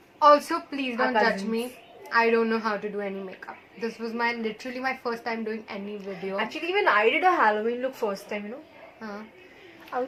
Also, please don't Our judge cousins. me. I don't know how to do any makeup. This was literally my first time doing any video. Actually, even I did a Halloween look first time, you know.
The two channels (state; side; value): identical; both; correlation 1.00